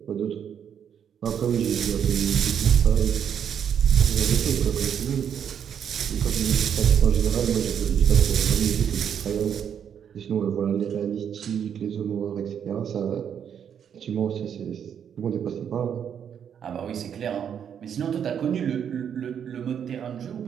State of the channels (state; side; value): quieter; left; 8.3 dB